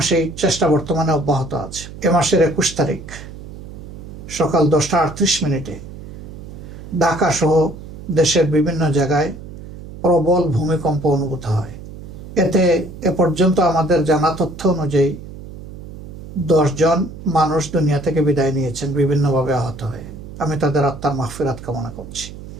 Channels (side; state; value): right; noise; hum, 13 dB below the sound